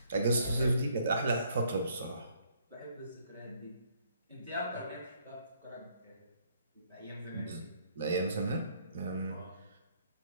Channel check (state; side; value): inverted; both; correlation -0.66